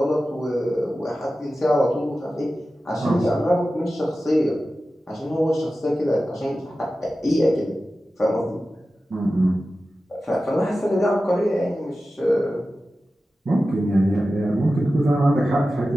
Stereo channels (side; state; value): both; normal; correlation 0.94